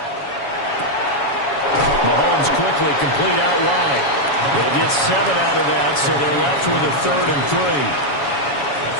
Mahomes quickly complete out wide. They'll get 7 out of that, so they're left with a 3rd and 3.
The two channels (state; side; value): late; right; 7.1 ms